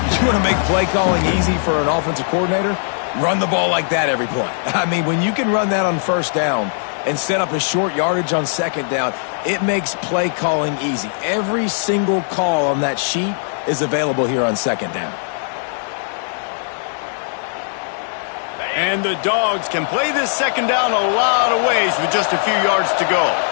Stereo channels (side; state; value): right; silent; digital silence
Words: You want to make play calling easy for an offensive coordinator? Run the ball like that every play. I mean, when you can run that on first down and set up a short yardage on second down, it makes play calling easy. Every single call on that sheet is available here on second down. And the Dogs can play this second down a lot of ways with just a few yards to go.